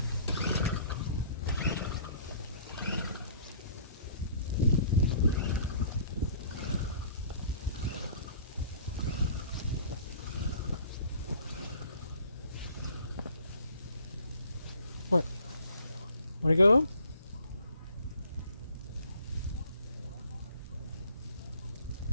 What? Wanna go home?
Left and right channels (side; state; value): both; inverted; correlation -0.54